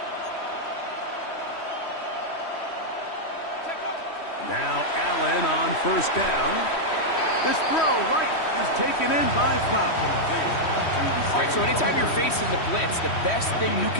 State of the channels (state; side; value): late; right; 3.1 ms